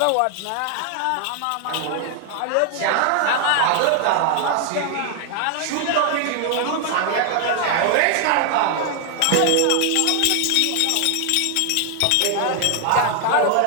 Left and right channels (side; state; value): both; different; correlation 0.00